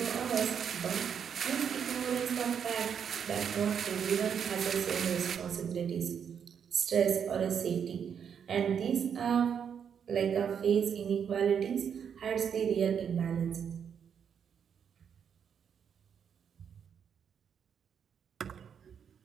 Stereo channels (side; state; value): left; quieter; 7.6 dB